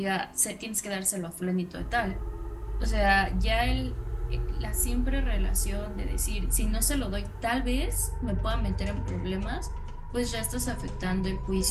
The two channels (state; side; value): identical; both; correlation 1.00